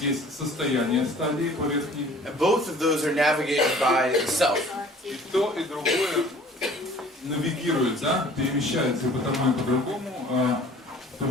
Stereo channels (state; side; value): normal; both; correlation 0.50